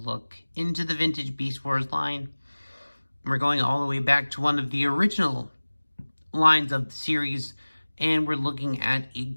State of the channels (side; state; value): both; inverted; correlation -1.00